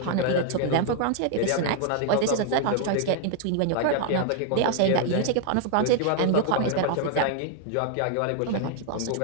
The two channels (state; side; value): different; both; correlation 0.00